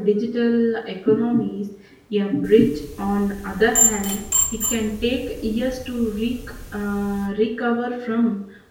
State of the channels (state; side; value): identical; both; correlation 1.00